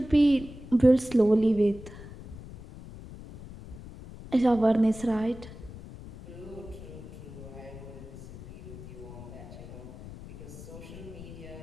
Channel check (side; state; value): left; noise; rumble, 14 dB below the sound